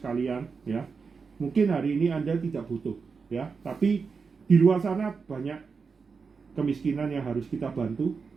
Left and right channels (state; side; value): quieter; left; 5.2 dB